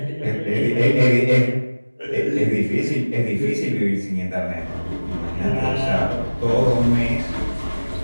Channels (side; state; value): both; inverted; correlation -1.00